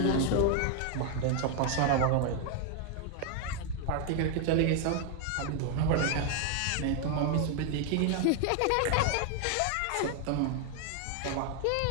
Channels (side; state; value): both; different; correlation 0.00